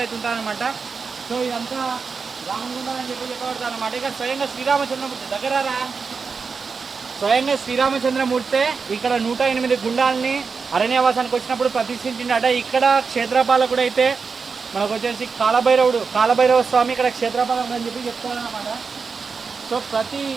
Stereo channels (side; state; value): left; quieter; 5.1 dB